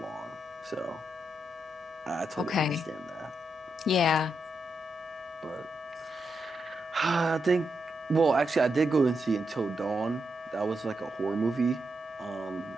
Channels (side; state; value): both; normal; correlation 0.84